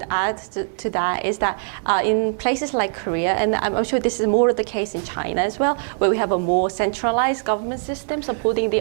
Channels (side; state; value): left; silent; 64 dB below the other